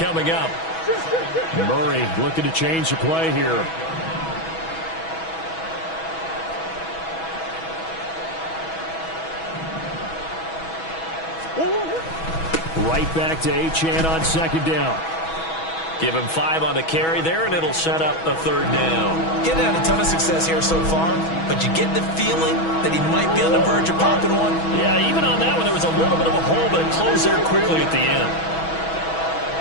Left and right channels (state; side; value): late; right; 6.2 ms